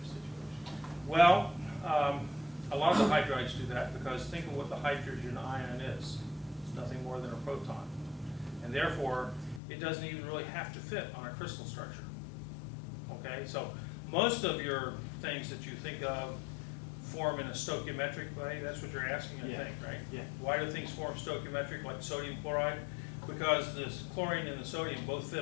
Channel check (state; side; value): drops out; right; at 9.6 s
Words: Well, a lot of the hydrides do that because think of what the hydrogen ion is. It's nothing more than a proton. And therefore, it doesn't even really have to fit on a crystal structure. Okay, so most of your things that you think of form in a stoichiometric way. That's what you're asking, I think, right? Yeah. Why do things form stoichiometric, like sodium chloride? Because the chlorine and the sodium both fit